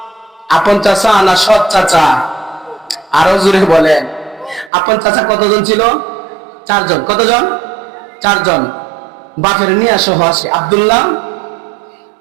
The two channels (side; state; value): left; drops out; at 4.7 s